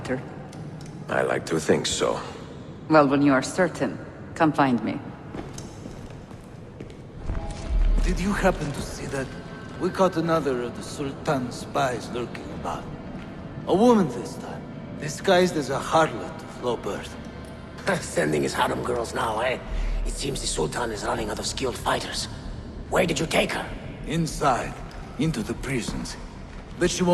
I like to think so. Well, when you are certain, come find me. Did you happen to see that? We caught another of the Sultan's spies lurking about. A woman this time, disguised as a harlot of low birth. Sending his harem girls now, eh? It seems the Sultan is running out of skilled fighters. Where did you take her? Inside, into the prisons. but she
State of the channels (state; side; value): identical; both; correlation 1.00